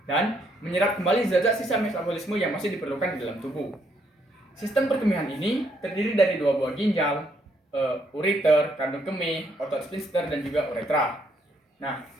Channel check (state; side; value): normal; both; correlation 0.72